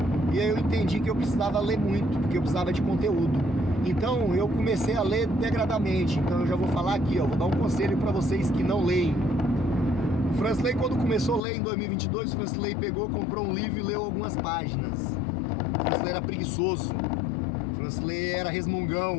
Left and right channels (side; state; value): right; drops out; at 11.4 s